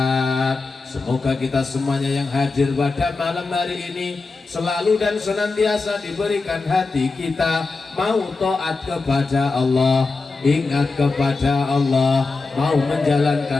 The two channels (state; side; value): quieter; right; 3.9 dB